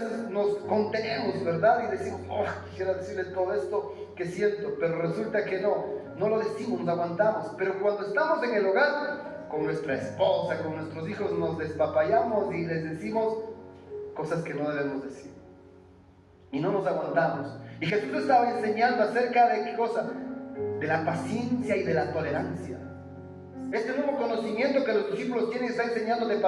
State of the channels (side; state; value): both; identical; correlation 1.00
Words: nos contenemos, ¿verdad? Y decimos, quisiera decirle todo esto que siento, pero resulta que no lo decimos, nos aguantamos. Pero cuando estamos en el hogar, con nuestra esposa, con nuestros hijos, nos despapallamos y les decimos cosas que no debemos decir. Y no nos aguantamos. Y Jesús estaba enseñando acerca de qué cosa, de la paciencia y de la tolerancia. Este nuevo conocimiento que los discípulos tienen está enseñando de